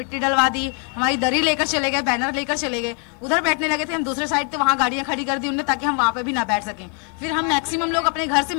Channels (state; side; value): quieter; right; 37.6 dB